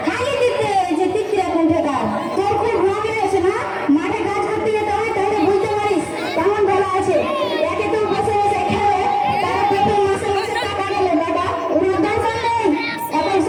খালি দিতে যে তিত্রা কোন ঠেকা তোর খুব রোগ আছে না মাঠে কাজ করতে যেতে হয় তাহলে বুঝতে পারিস কেমন ভালো আছে একে তো বসে বসে খেলে তার পেটে মাসে মাসে টাকা গেলে বাবা ওর দরকার নেই এখন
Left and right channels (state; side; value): identical; both; correlation 1.00